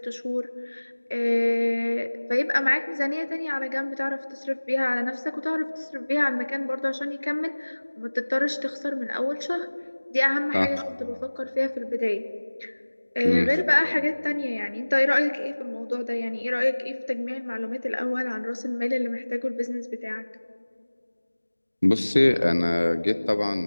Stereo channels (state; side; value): inverted; both; correlation -1.00